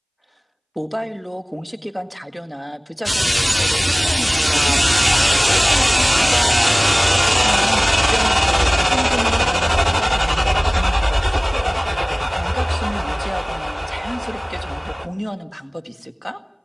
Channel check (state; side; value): identical; both; correlation 1.00